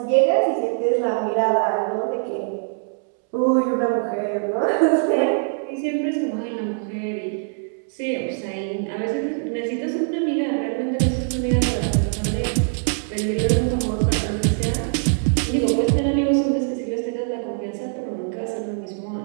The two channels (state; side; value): silent; left; 64 dB below the other